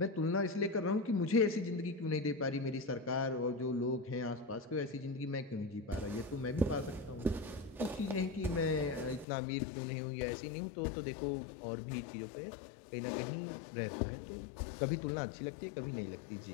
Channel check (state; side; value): drops out; right; at 9.2 s